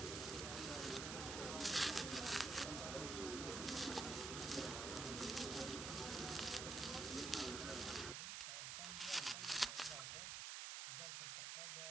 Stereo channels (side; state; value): right; noise; hiss, 3 dB below the sound